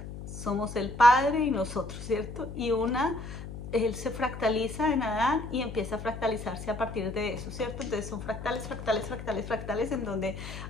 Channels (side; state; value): left; noise; hum, 10 dB below the sound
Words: somos el Padre y nosotros, ¿cierto? Y él se fractaliza en Adán y empieza a fractalizarse a partir de eso, ¿cierto? Entonces son fractales, fractales, fractales, fractales, en donde